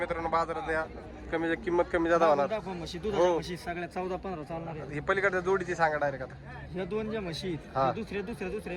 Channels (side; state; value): both; identical; correlation 1.00